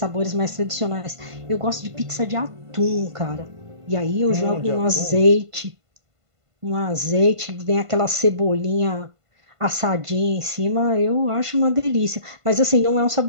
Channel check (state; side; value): late; left; 1.5 ms